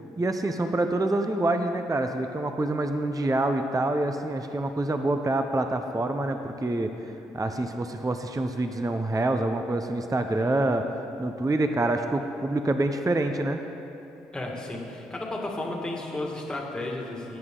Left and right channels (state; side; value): normal; both; correlation 0.83